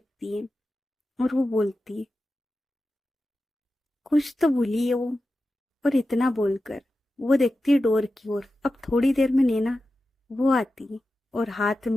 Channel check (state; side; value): normal; both; correlation 0.92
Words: है और वो बोलती, कुछ तो भूली है वो। और इतना बोलकर वो देखती है डोर की ओर। अब थोड़ी देर में नैना वो आती है और हाथ